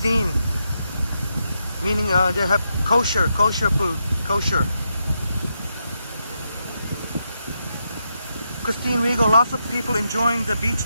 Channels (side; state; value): both; inverted; correlation -0.83